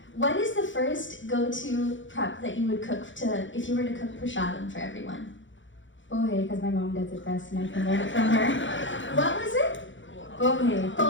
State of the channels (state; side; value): late; right; 0.55 ms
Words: What is the first go-to prep that you would cook if you were to cook prasadam for everyone? Pohe, because my mom does it best and I can learn it from her. What was it? Pohe.